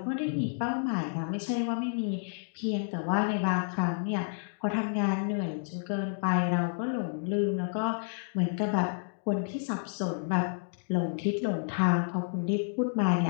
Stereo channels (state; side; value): silent; right; digital silence